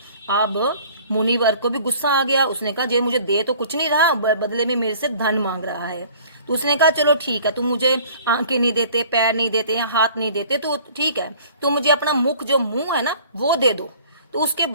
अब मुनिवर को भी गुस्सा आ गया। उसने कहा जे मुझे दे तो कुछ नहीं रहा, बदले में मेरे से धन मांग रहा है। तो उसने कहा चलो ठीक है, तुम मुझे आंखें नहीं देते, पैर नहीं देते, हाथ नहीं देते तो ठीक है, तुम मुझे अपना मुख जो मुंह है ना वो दे दो, तो उसके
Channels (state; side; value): inverted; both; correlation -0.50